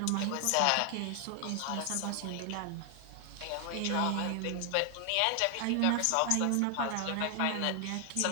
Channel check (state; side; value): different; both; correlation 0.00